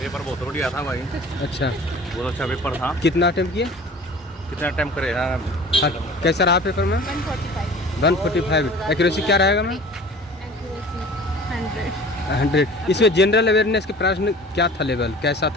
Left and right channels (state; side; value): normal; both; correlation 0.43